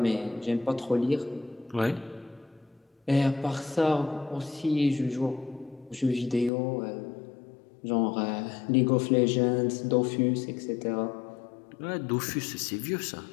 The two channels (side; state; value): right; drops out; at 6.5 s